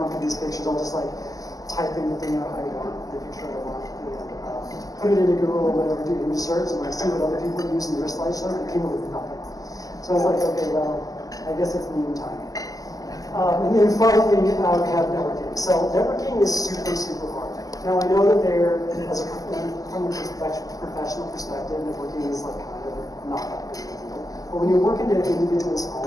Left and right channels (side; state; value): right; late; 0.17 ms